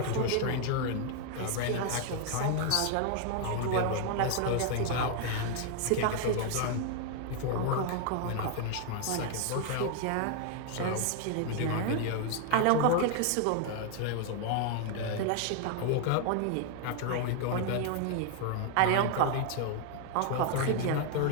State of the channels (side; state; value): both; different; correlation 0.00